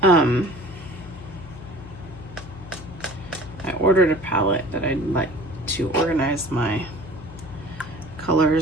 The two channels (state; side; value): noise; left; hum, 15 dB below the sound